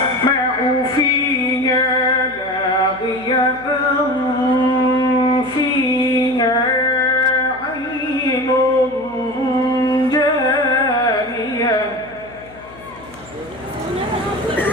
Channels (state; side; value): noise; left; hum, 21 dB below the sound